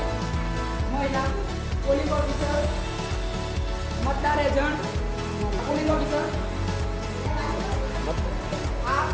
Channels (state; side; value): identical; both; correlation 1.00